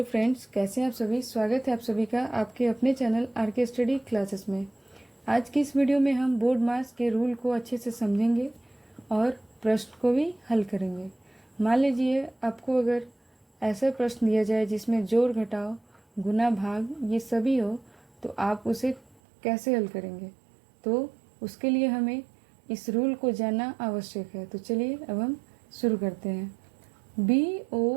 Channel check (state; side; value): drops out; left; at 19.2 s